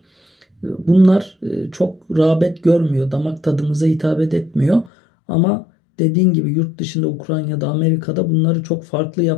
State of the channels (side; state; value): right; drops out; at 4.9 s